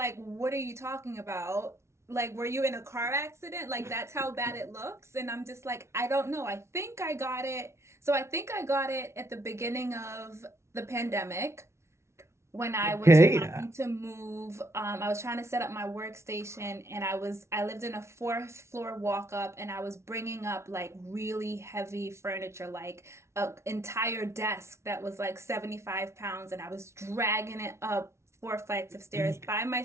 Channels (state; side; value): late; left; 0.13 ms